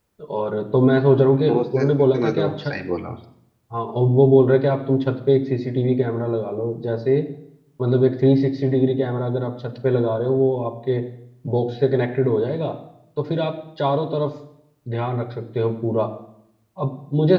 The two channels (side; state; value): both; identical; correlation 1.00